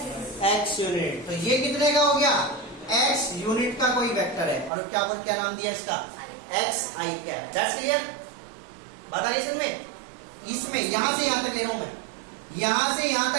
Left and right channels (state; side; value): drops out; left; at 4.7 s